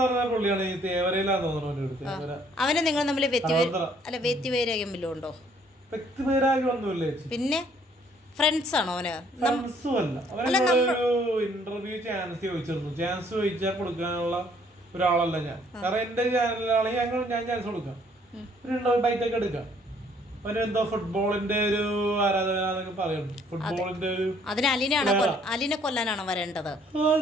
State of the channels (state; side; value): normal; both; correlation 0.62